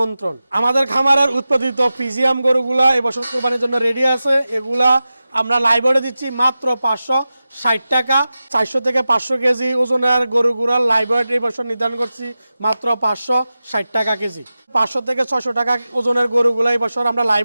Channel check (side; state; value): both; inverted; correlation -0.93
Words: আমাদের খামারের উৎপাদিত ফিজিয়াম গরুগুলা এবছর কুরবানির জন্য রেডি আছে। এগুলা আমরা লাইভে দিচ্ছি মাত্র 560 টাকা। 400 থেকে 500 কেজি ওজনের গরুগুলার লাইভ ওয়েট এই বছর নির্ধারণ করছি মাত্র 560 টাকা কেজি। 500 থেকে 600 টাকা ওজনের গরুগুলো এই বছর আমরা